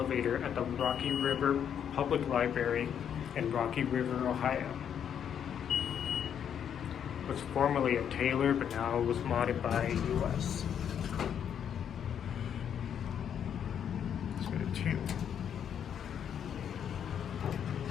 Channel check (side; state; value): right; quieter; 8.6 dB